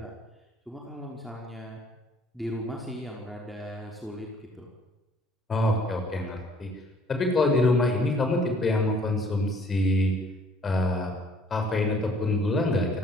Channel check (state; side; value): normal; both; correlation 0.59